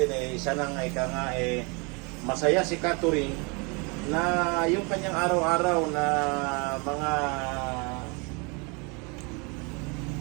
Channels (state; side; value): quieter; left; 31.1 dB